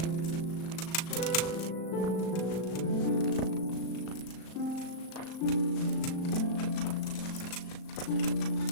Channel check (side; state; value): right; late; 37 ms